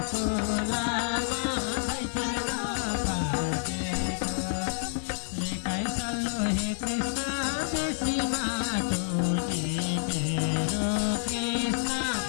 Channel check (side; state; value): right; silent; 59 dB below the other